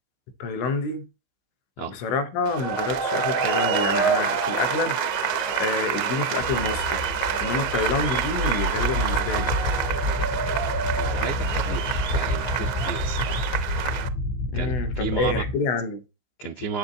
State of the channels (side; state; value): right; late; 15 ms